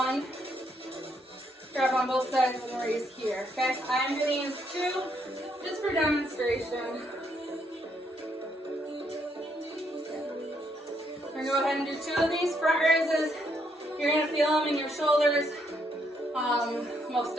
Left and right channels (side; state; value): both; normal; correlation 0.74